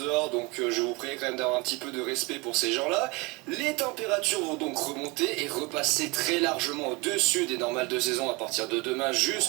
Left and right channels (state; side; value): quieter; left; 26.5 dB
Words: donc je vous prie quand même d'avoir un petit peu de respect pour ces gens-là. Les températures vont donc remonter et repasser très largement au-dessus des normales de saison à partir de demain